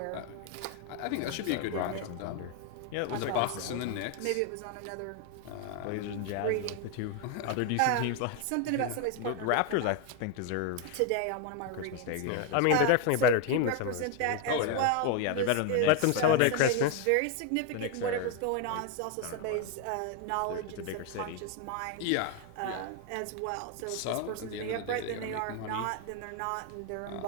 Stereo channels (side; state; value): both; different; correlation 0.01